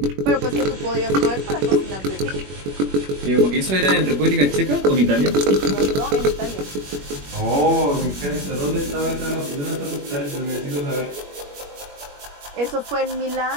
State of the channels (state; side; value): late; left; 21 ms